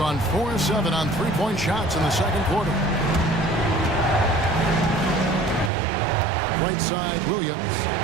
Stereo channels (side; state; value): left; drops out; at 5.7 s